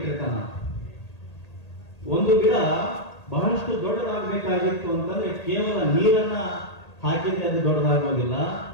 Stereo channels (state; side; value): late; right; 1.8 ms